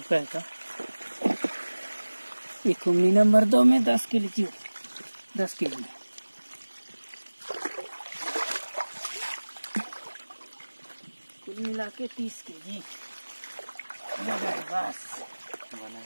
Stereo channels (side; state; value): both; inverted; correlation -1.00